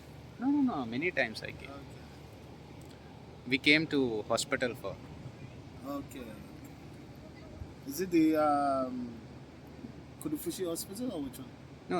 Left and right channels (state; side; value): identical; both; correlation 1.00